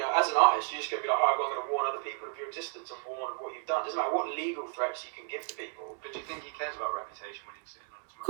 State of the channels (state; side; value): silent; left; 56 dB below the other